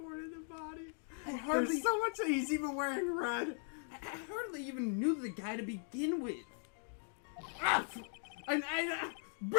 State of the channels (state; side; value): silent; right; 52 dB below the other